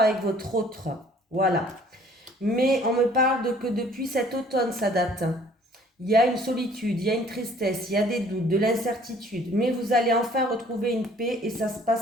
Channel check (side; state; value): both; normal; correlation 0.56